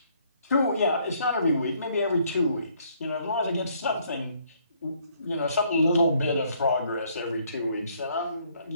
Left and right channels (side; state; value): both; inverted; correlation -0.66